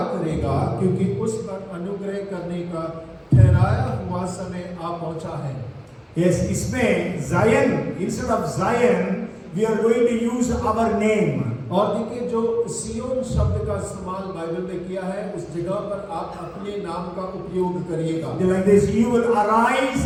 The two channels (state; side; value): identical; both; correlation 1.00